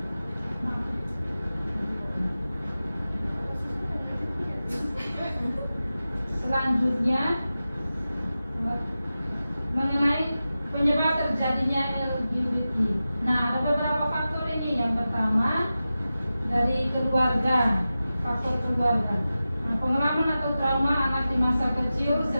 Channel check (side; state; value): both; inverted; correlation -0.94